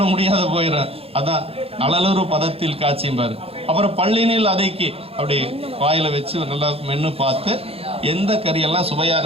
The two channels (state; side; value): late; left; 0.28 ms